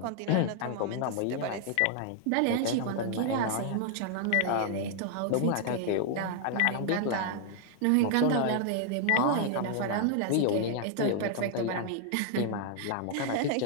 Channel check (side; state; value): both; different; correlation 0.00